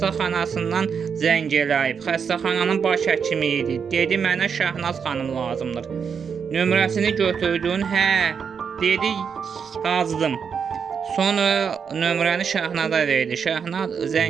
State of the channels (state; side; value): quieter; left; 6.6 dB